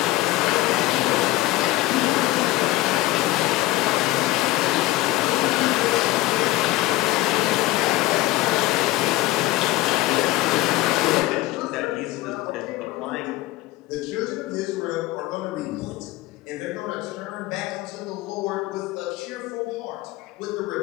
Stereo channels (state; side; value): quieter; right; 17.5 dB